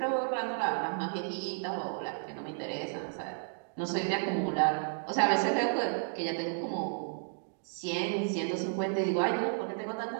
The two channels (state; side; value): silent; left; digital silence